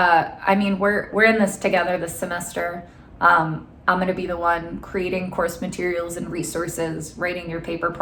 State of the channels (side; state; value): both; identical; correlation 1.00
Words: mean, we're in this together this semester. I'm going to be the one creating course materials and resources, writing your paper